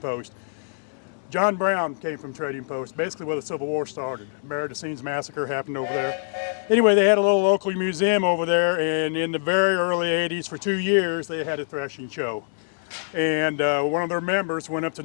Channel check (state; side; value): silent; right; digital silence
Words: John Brown came from Trading Post, basically where the Civil War started. Maridicines Massacre happened over there. Anyway, they had a little local museum over there, and in the very early 80s, for 2 years, they had a threshing show. And one of their members went up to